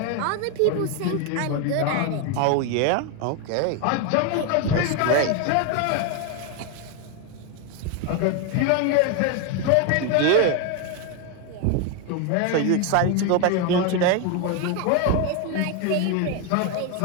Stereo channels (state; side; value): different; both; correlation 0.02